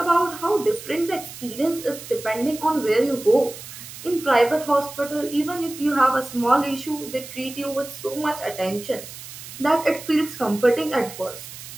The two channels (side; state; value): right; noise; hiss, 13 dB below the sound